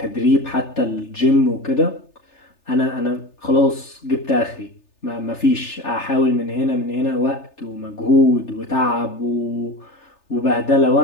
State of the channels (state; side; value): late; right; 3.3 ms